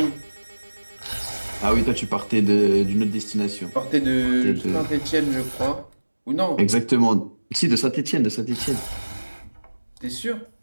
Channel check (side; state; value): both; inverted; correlation -1.00